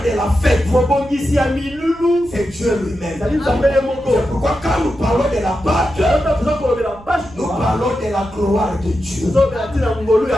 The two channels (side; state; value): right; noise; rumble, 21 dB below the sound